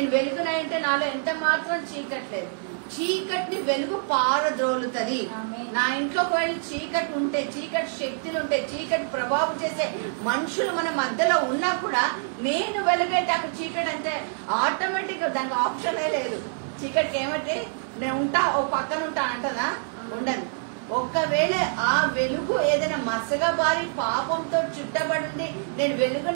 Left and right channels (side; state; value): left; silent; 61 dB below the other